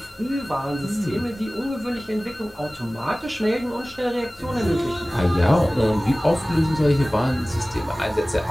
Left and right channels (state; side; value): normal; both; correlation 0.98